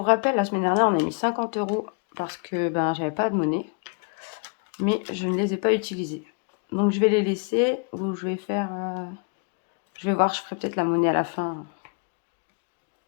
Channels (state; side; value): quieter; right; 36.7 dB